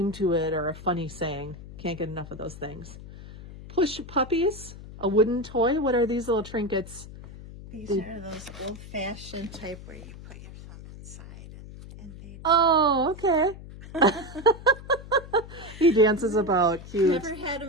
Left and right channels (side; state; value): left; noise; hum, 15 dB below the sound